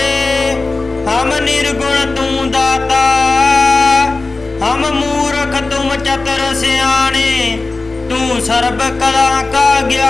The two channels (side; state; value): right; quieter; 3.5 dB